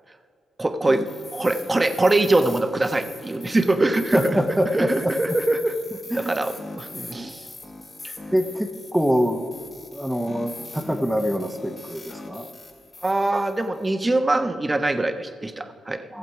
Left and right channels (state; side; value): normal; both; correlation 0.95